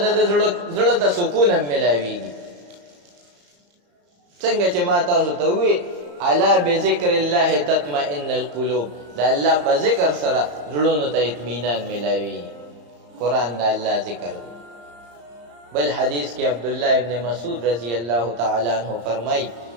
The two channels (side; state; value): left; late; 34 ms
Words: د زړه ته سکون هم ملاویږي څنګه چې ما تاسو ته ووایي الا بذکر الله تطمئن القلوب د الله په ذکر سره زړونو ته اطمینان ملاوي قرآن د الله ذکر دی بل حدیث کې عبدالله ابن مسعود رضی الله تعالی عنہ فرمای